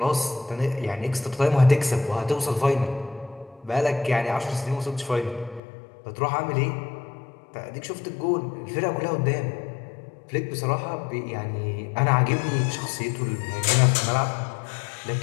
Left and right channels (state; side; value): drops out; right; at 5.6 s